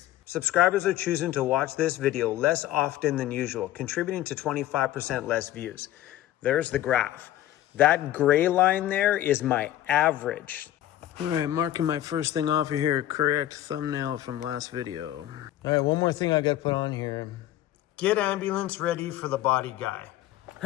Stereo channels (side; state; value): right; quieter; 13.6 dB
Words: Subscribers are choosing to watch this video less often than usual, contributing to 25% less views. There's the graph. That gray line there is my average. All right, marking my first thing off here, correct thumbnail from last video. All right, one more thing I gotta put on here. Get ambulance ready for the body guy.